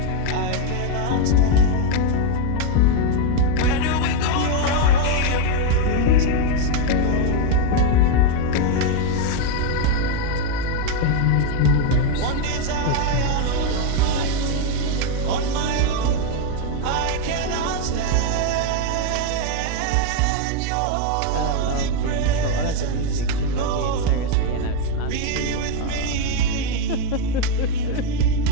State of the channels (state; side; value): different; both; correlation 0.01